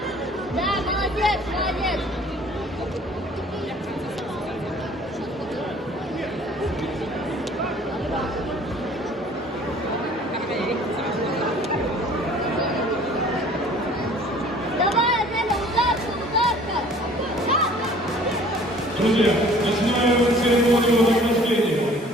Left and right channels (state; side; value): normal; both; correlation 0.52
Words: Да, молодец, молодец. Давай, Аделя, ударка, ударка. Друзья, начинаем церемонию награждения.